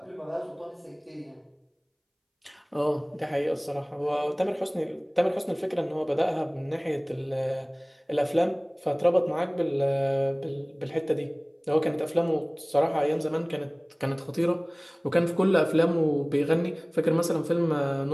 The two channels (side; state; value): both; identical; correlation 1.00